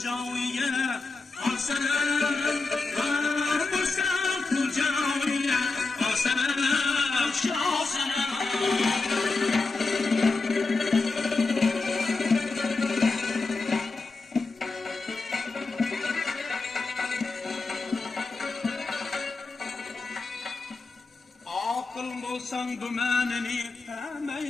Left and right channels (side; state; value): right; quieter; 3.8 dB